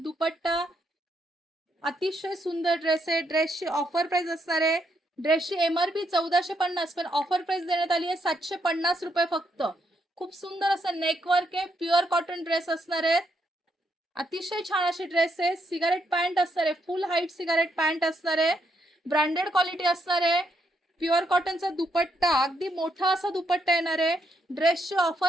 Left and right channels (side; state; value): both; normal; correlation 0.77